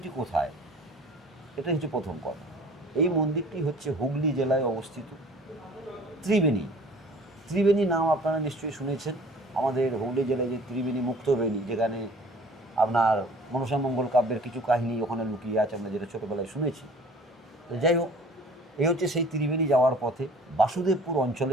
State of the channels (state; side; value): normal; both; correlation 0.49